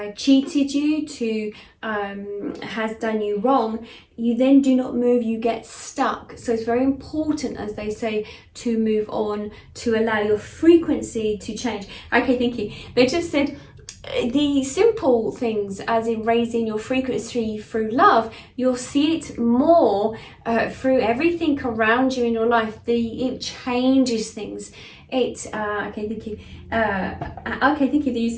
cheated you, to has done you wrong, you then do not move, you get stuck. So it's very important, as they say, to move on, to allow your frequency to change. Okay, thank you. They just said the simple things, as in raising your frequency through love, you'll see it more through everything around you in your life. It changes things. Okay, thank you. Okay, thank you. They use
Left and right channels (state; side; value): identical; both; correlation 1.00